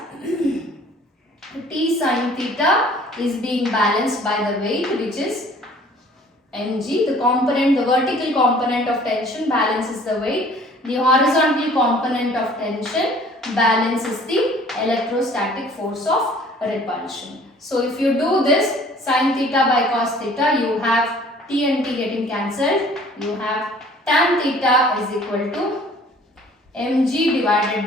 T sin theta is being balanced by the weight, which is mg. The component, the vertical component of tension balances the weight. The horizontal component of tension balances the electrostatic force of repulsion. So if you do this, sin theta by cos theta, you have T and T getting cancelled. You have tan theta is equal to mg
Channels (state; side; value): normal; both; correlation 0.52